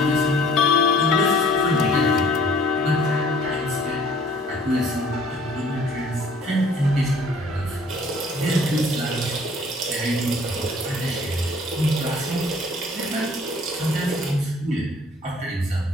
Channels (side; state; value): both; normal; correlation 0.55